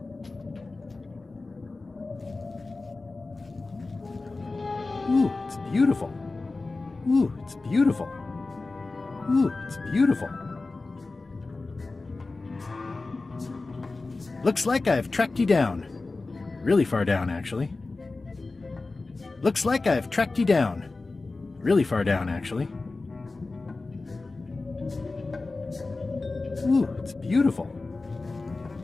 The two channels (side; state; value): right; quieter; 3.5 dB